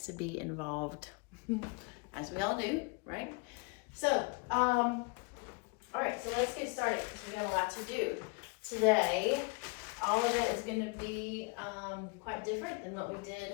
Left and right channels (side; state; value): right; quieter; 31.0 dB